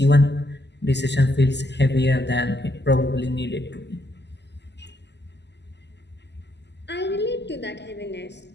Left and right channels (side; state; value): right; late; 0.50 ms